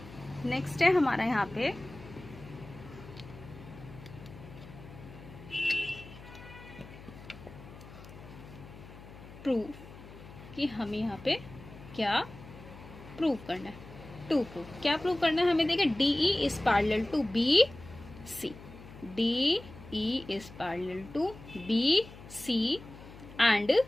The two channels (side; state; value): left; noise; hum, 17 dB below the sound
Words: प्रूफ, कि हमें यहाँ पे क्या प्रूव करना है। टू प्रूव, क्या प्रूव करना है हमें, देखिए DE is parallel to BC, DE is parallel to BC and